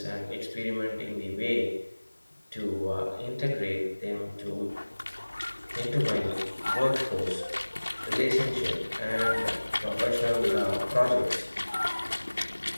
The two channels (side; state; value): both; inverted; correlation -1.00